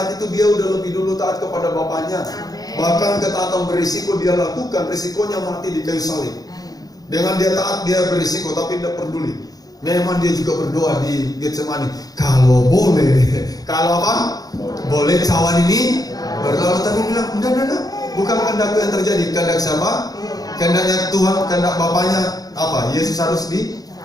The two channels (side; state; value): right; late; 0.18 ms